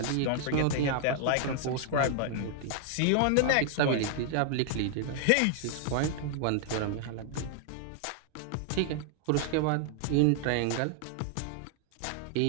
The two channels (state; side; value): different; both; correlation 0.00